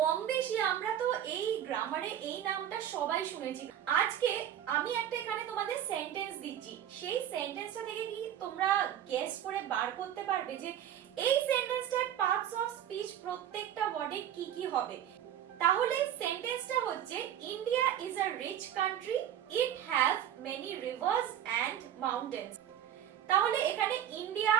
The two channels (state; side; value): quieter; left; 10.4 dB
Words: বেশি আমরা তো এই গ্রামারে এই নামটা সবাই শুনেছি। আজকে আমি একটা এখানে তোমাদের সেন্টেন্স দিচ্ছি, সেই সেন্টেন্সটা থেকে কি তোমরা গেস করে বার করতে পারবে যে এই সেন্টেন্সটার পার্টস অফ স্পিচ প্রত্যেকটা ওয়ার্ডে কি কি হবে। তাহলে সেন্টেন্সটা হচ্ছে India is a rich country, it have many rivers and mountains. তাহলে এখানে ইন্ডিয়া